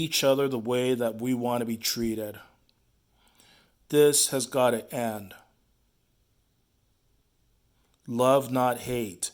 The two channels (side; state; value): both; identical; correlation 1.00